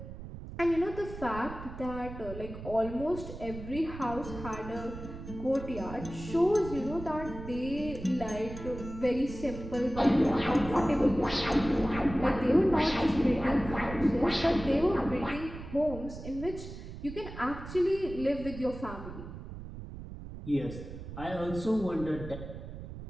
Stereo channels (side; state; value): right; noise; rumble, 11 dB below the sound